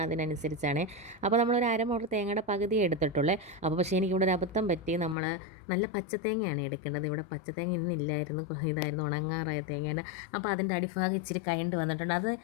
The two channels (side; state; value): right; drops out; at 5.2 s